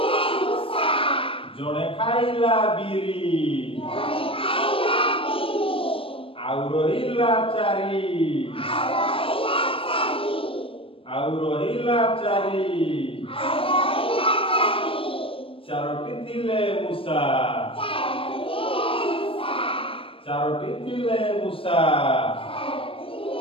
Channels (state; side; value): late; right; 0.26 ms